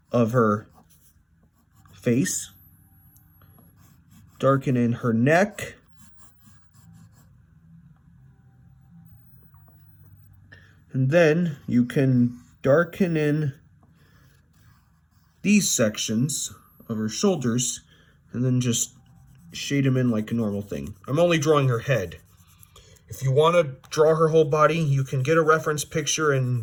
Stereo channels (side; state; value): both; identical; correlation 1.00